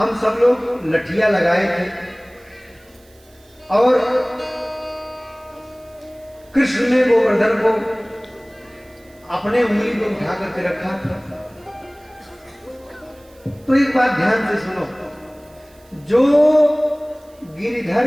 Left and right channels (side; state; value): right; noise; hiss, 30 dB below the sound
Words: सब लोग लठिया लगाए थे और कृष्ण ने गोवर्धन को अपने उंगली पर उठा करके रखा था। तो एक बात ध्यान से सुनो, जो गिरिधर